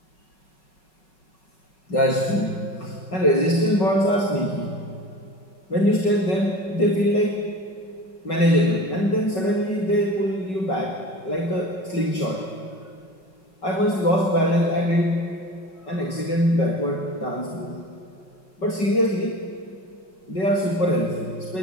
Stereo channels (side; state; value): right; late; 5.4 ms